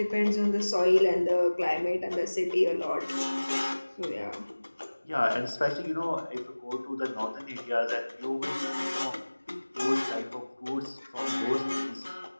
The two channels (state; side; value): inverted; both; correlation -1.00